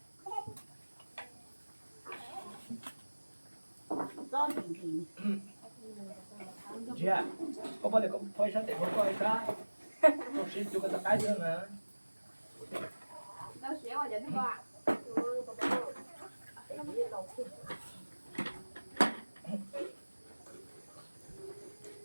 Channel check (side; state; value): both; inverted; correlation -1.00